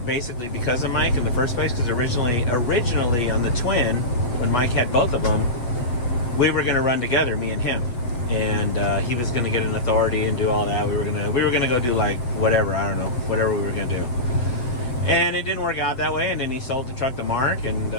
basically because of Mike in the first place. Because originally on the Twin, when Mike had both of them, we were going to run together, me and him, and he was going to get an authority and do all that. We were gonna go do like whatever, I don't know, whatever we were going to do. And it didn't work out that way. And then he sold the truck to Mark, and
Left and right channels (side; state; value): right; late; 7.7 ms